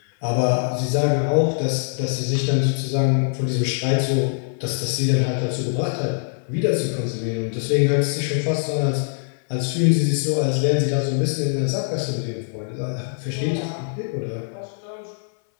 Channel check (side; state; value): right; silent; 64 dB below the other